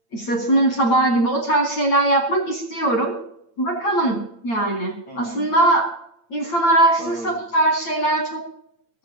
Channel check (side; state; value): right; late; 8.8 ms